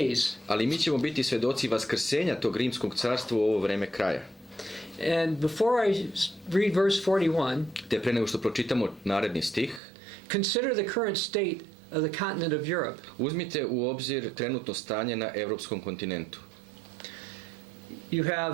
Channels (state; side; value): drops out; left; at 9.8 s